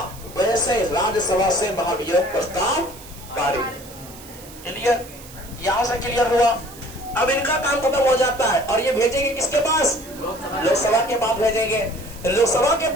वैसे राज्यसभा से महाभियोग प्रस्ताव पारित। क्लियर? यहां से क्लियर हुआ। अब इनका काम खत्म हो जाता है और ये भेजेंगे किसके पास? लोकसभा के पास भेजेंगे। लोकसभा के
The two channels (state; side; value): noise; right; hiss, 18 dB below the sound